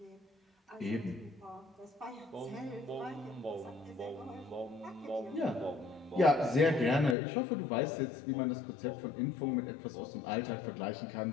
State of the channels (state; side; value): drops out; right; at 7.2 s